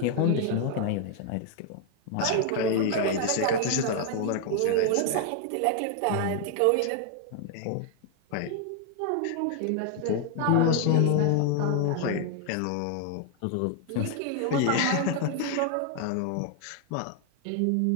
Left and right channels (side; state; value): both; different; correlation 0.00